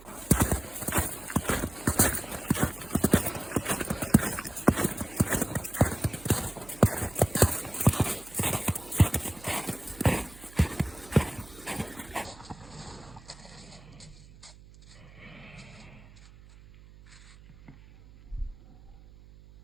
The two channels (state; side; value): noise; right; hum, 21 dB below the sound